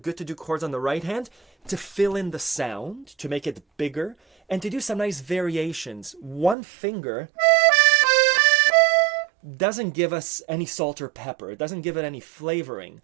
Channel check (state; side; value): drops out; left; at 6.6 s